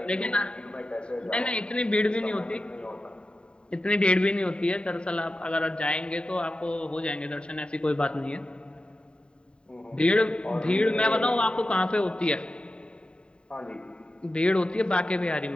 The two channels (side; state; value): right; late; 0.052 ms